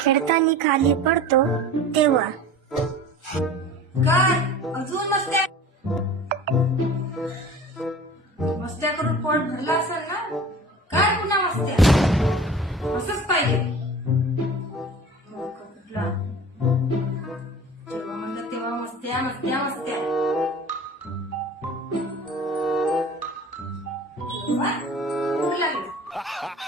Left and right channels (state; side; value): normal; both; correlation 0.40